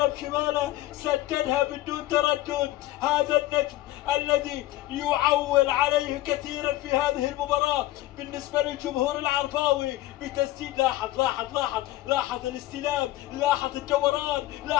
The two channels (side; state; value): right; quieter; 16.2 dB